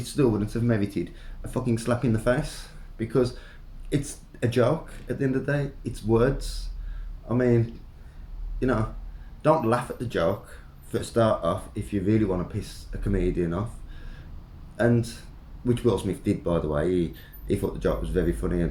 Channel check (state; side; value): identical; both; correlation 1.00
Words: still wouldn't have merited a fucking slap in the face because it's a joke at the end of the day. It's words. I mean, you know, don't laugh at the joke for a start off if you really want to piss a comedian off. And which Will Smith did, by the way. He thought the joke was very funny